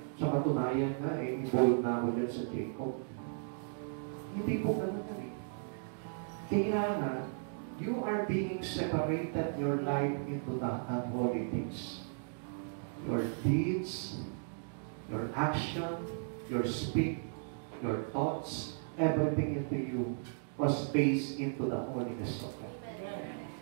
sa katunayan nga, involved na ako dyan sa Jacob. Hindi po ganun yan eh. Kailangan, you are being separated your life into the unholy things. Your deeds, your action, your speak, your thoughts, everything into you was based into the holiness of God.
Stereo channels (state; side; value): silent; left; digital silence